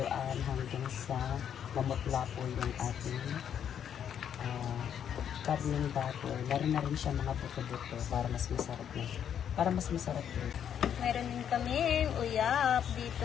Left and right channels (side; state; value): right; quieter; 8.9 dB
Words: hanggang sa mamutla po yung ating karneng baboy. Meron na rin siya mga buto-buto para mas masarap na. Para mas masarap din. Meron din kami uyap dito